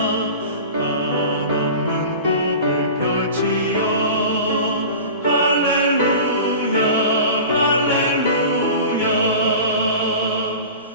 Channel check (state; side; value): inverted; both; correlation -0.35